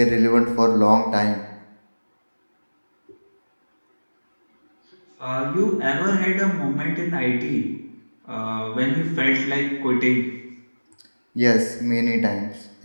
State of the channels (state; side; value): inverted; both; correlation -1.00